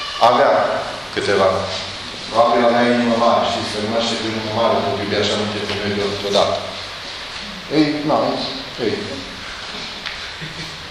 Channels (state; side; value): identical; both; correlation 1.00